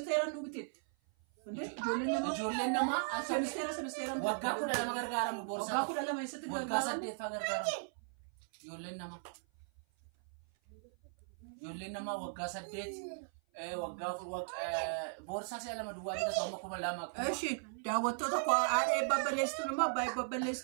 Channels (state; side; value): silent; left; 53 dB below the other